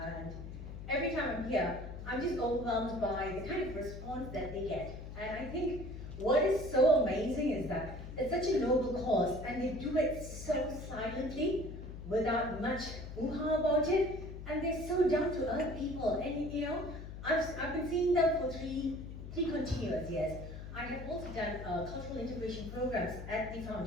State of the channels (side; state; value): left; noise; hum, 10 dB below the sound